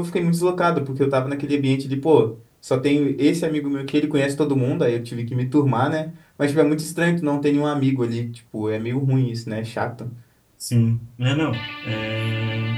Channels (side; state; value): both; identical; correlation 1.00